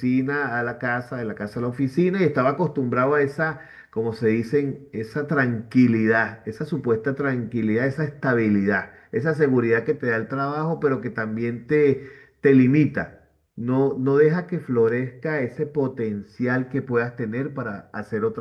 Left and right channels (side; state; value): both; identical; correlation 1.00